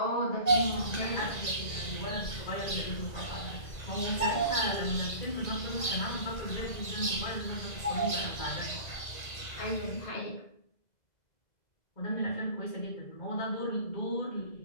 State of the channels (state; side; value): late; right; 2.0 ms